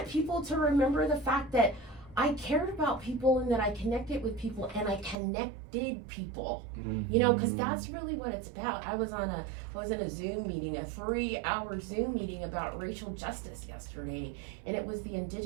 people to remember the fact that I cared about people, and that I connected with people, and I connected people. Because that's really what it's about. I was in a Zoom meeting, a 3-hour Zoom meeting about racial justice yesterday, and it was the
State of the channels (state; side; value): drops out; left; at 5.2 s